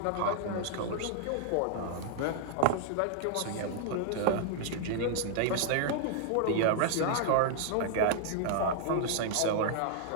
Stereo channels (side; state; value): both; different; correlation -0.01